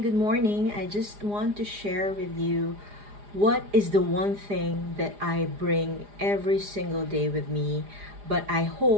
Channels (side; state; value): left; late; 4.9 ms